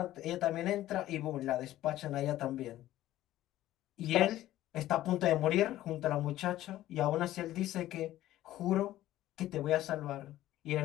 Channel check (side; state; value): right; quieter; 14.4 dB